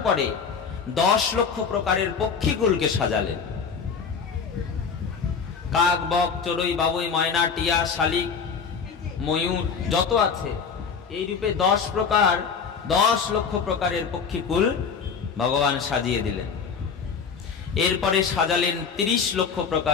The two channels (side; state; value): right; quieter; 6.0 dB